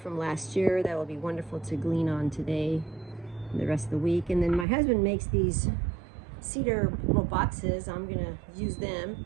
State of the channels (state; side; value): drops out; left; at 4.7 s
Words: last year that will be wonderful to glean on today and the rest of the week. And then my husband makes these cedar little boxes. I'm going to use them